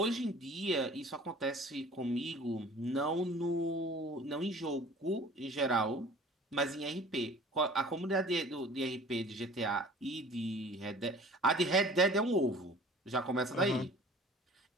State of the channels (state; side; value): normal; both; correlation 0.47